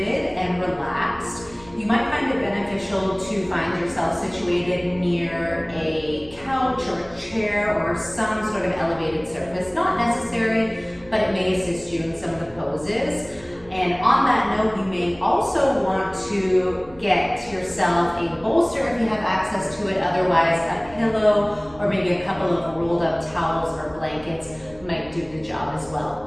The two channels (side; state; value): right; noise; rumble, 23 dB below the sound